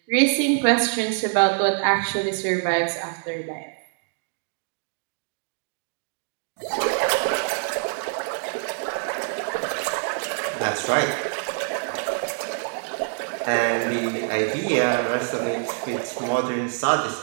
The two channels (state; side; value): silent; left; digital silence